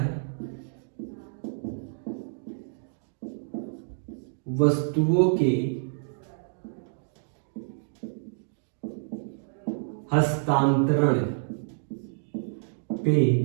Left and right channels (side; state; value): left; silent; digital silence